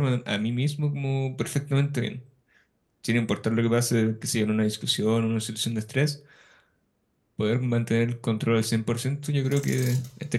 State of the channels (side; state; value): both; identical; correlation 1.00